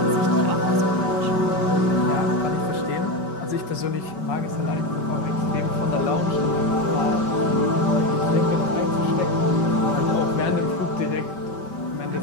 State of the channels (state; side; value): late; right; 5.2 ms